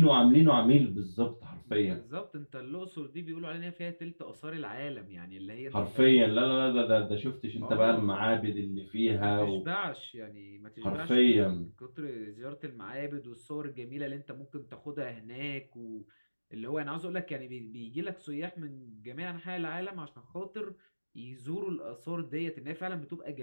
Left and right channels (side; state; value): both; inverted; correlation -1.00